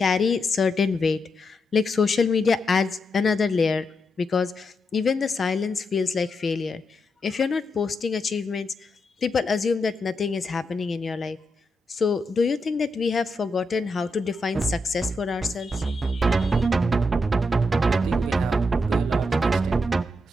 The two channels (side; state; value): both; normal; correlation 0.84